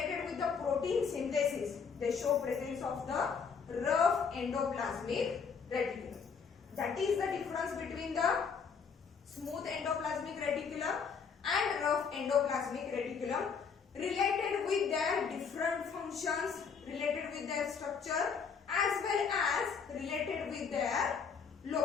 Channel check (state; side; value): quieter; right; 6.0 dB